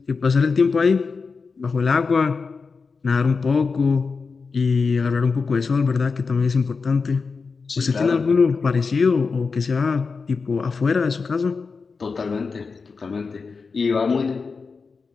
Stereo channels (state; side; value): quieter; right; 4.8 dB